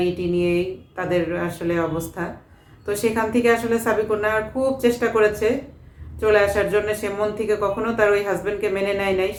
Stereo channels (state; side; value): identical; both; correlation 1.00